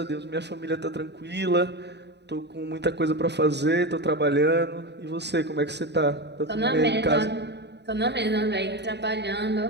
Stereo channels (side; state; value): left; late; 0.50 ms